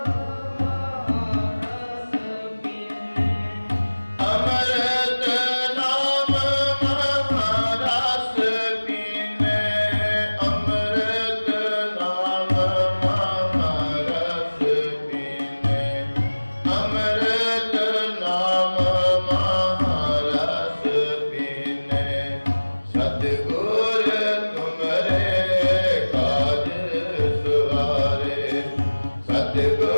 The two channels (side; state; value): both; inverted; correlation -1.00